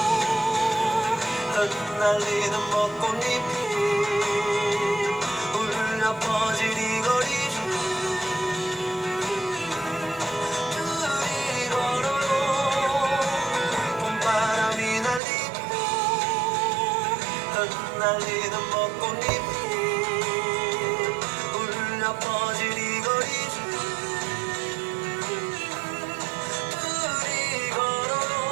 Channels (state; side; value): drops out; left; at 15.2 s